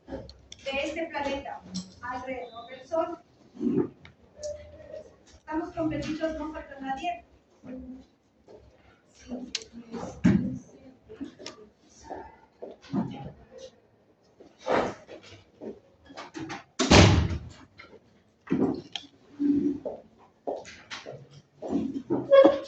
de este planeta alrededor del Sol. Estamos completitos, no falta nadie.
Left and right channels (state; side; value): identical; both; correlation 1.00